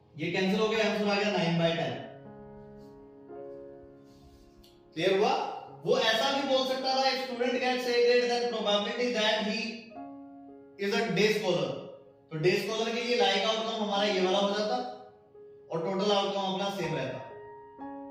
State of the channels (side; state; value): both; identical; correlation 1.00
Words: ये कैंसिल हो गया, आंसर आ गया 9/10. क्लियर हुआ? वो ऐसा भी बोल सकता था, if student gets A grade then probability that he is a day scholar, तो डे स्कॉलर के लिए लाइक आउटकम हमारा ये वाला हो जाता और टोटल आउटकम अपना सेम रहता.